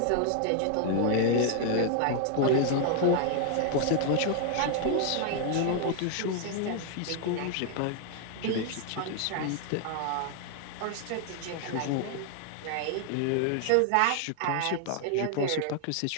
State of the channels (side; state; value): both; different; correlation 0.00